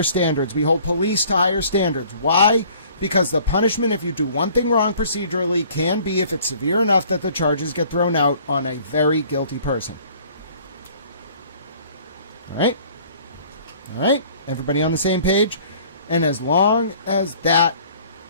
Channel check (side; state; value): both; inverted; correlation -0.53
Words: standards. We hold police to higher standards. Why? Because the punishment, if you do one thing wrong procedurally, can be, if it's severe enough, that the charges get thrown out on a very guilty person. All right? All right? Everybody on the same page? And as long as that...